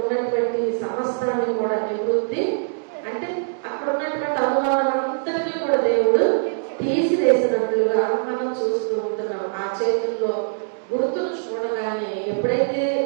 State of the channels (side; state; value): left; silent; digital silence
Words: ఉన్నటువంటి సమస్తాన్ని కూడా నివృత్తి, అంటే అక్కడ ఉన్నటువంటి అనుమానం అంతటినీ కూడా దేవుడు తీసివేసినట్లుగా మనం చూస్తూ ఉంటున్నాం. ఆ చేతుల్లో గుర్తులు చూడగానే ఎప్పుడైతే